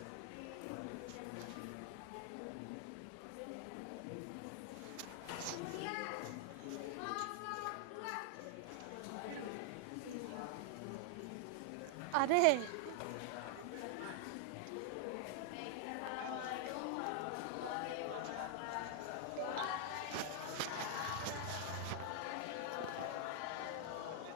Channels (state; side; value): different; both; correlation -0.01